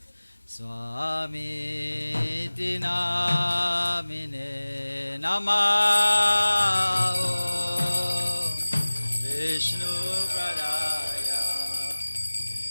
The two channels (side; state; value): both; inverted; correlation -1.00